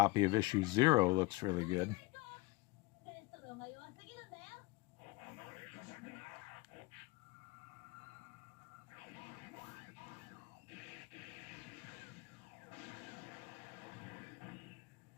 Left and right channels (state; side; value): quieter; right; 22.6 dB